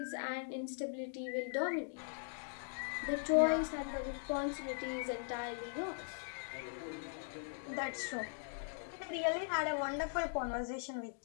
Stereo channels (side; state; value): right; silent; digital silence